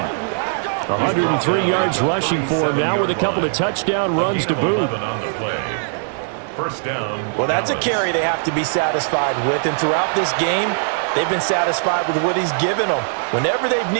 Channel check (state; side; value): silent; left; digital silence